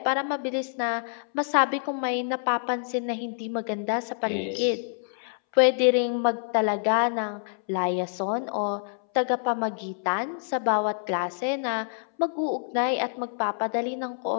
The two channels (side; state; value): right; silent; 60 dB below the other